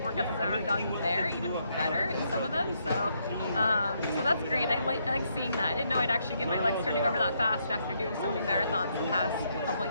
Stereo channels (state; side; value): inverted; both; correlation -0.76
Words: workouts as I've ever done there, even better in some of them. So that's great. I like seeing that. I didn't know I'd actually get my legs turning over that fast after doing so many marathons the past couple